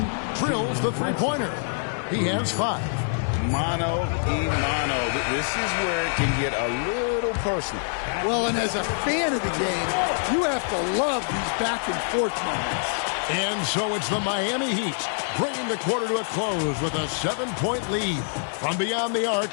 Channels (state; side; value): silent; right; digital silence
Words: drills the three-pointer. He has 5. Mano y mano. This is where it can get a little personal. Well, and as a fan of the game, you have to love these back-and-forth moments. And so it's the Miami Heat bringing the quarter to a close with a 7-point lead. From beyond the arc,